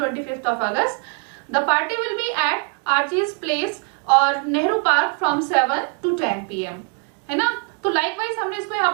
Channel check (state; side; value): quieter; left; 38.7 dB